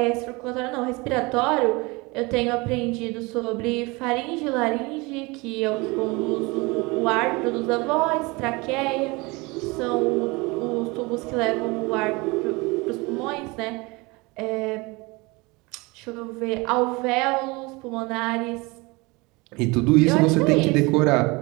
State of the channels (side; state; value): left; quieter; 25.1 dB